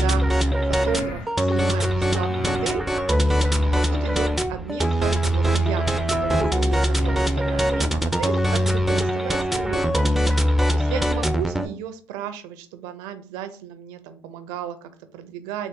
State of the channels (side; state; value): both; normal; correlation 0.88